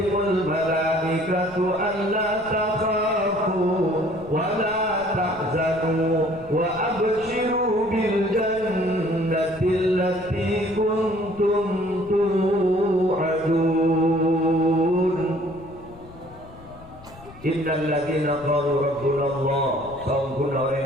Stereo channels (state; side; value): noise; left; rumble, 20 dB below the sound